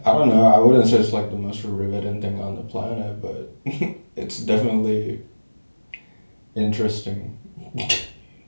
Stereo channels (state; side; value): inverted; both; correlation -1.00